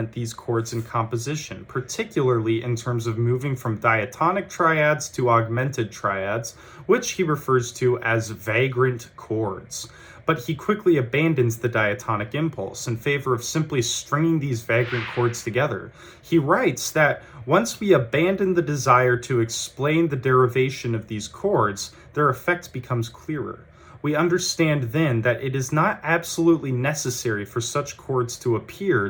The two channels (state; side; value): identical; both; correlation 1.00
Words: these chords in composition, particularly in terms of moving from diatonic triads to augmented triads, which he refers to as vagrant chords. But he quickly abandons the diatonic impulse in favor of simply stringing these vagrant chords together. He writes that once we abandon the desire to explain the derivation of these chords, their effect becomes clearer. We understand then that it is not absolutely necessary for such chords to appear